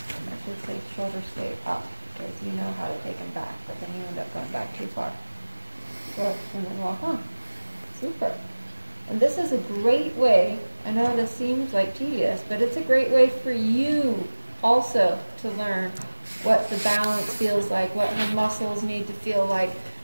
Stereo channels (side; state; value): both; inverted; correlation -1.00